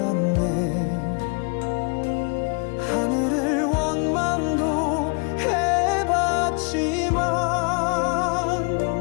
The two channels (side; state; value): right; quieter; 35.0 dB